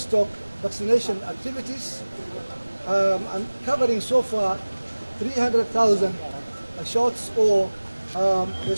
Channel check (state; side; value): inverted; both; correlation -1.00